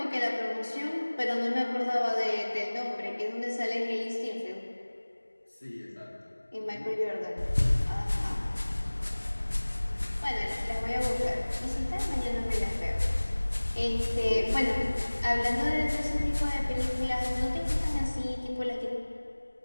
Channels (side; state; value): both; inverted; correlation -1.00